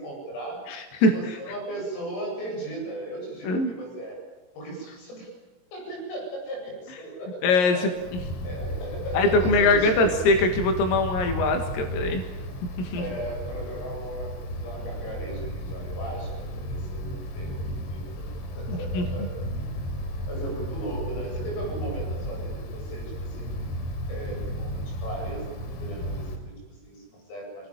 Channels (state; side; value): late; right; 22 ms